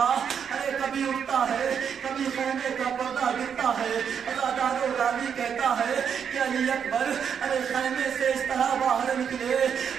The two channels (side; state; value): left; quieter; 7.5 dB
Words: ارے کبھی اٹھتا ہے، کبھی خیمے کا پردہ گرتا ہے۔ عزادار راوی کہتا ہے کہ علی اکبر ارے خیمے سے اس طرح باہر نکلے